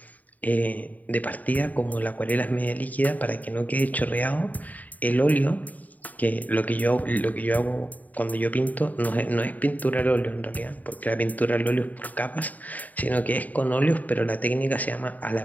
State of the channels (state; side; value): late; right; 0.077 ms